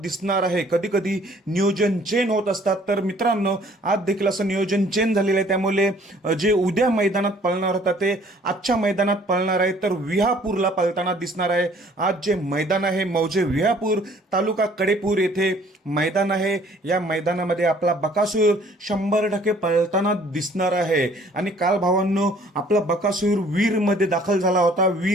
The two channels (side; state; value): both; normal; correlation 0.57